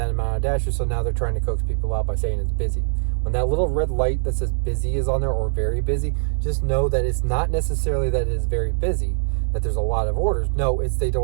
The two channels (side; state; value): left; silent; digital silence